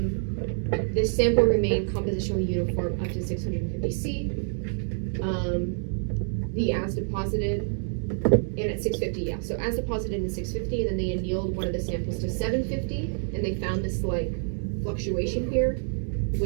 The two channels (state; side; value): silent; left; digital silence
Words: This sample remained compositionally uniform up to 650 C. The as deposited, and at 650, yeah. So as deposited in 650, and then they annealed one of the samples to 750, and they found this like fluctuation here,